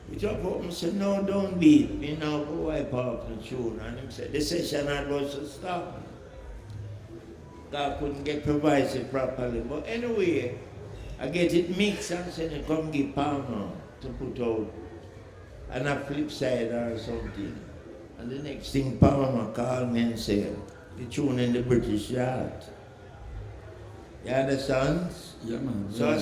We talk up and said, no, don't beat me now, go wipe off the tune. And he said, the session had was to stop. God couldn't get provided properly. But anyway, I get it mixed and said, come give Palmer to put out on a flip side or something. And the next thing Palmer called me and said, the tune in the British yard. You understand? Yeah, man. So I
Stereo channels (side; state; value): both; identical; correlation 1.00